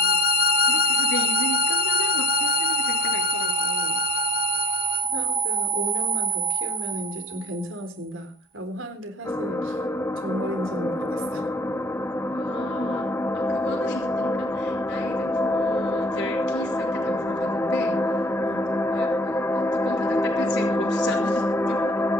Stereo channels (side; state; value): both; normal; correlation 0.48